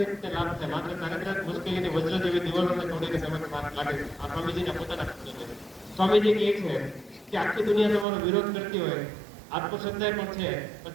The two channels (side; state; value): left; drops out; at 8.1 s